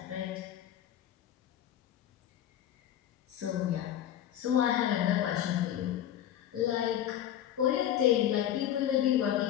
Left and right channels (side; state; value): right; quieter; 11.2 dB